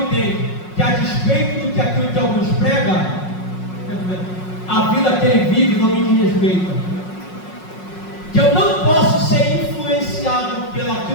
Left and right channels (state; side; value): late; right; 5.5 ms